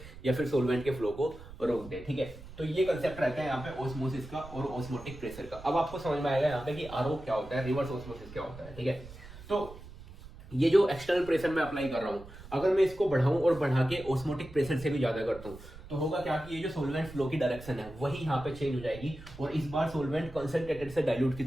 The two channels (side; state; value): right; noise; rumble, 16 dB below the sound